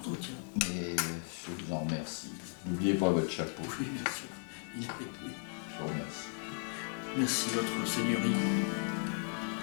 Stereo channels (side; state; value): right; silent; 54 dB below the other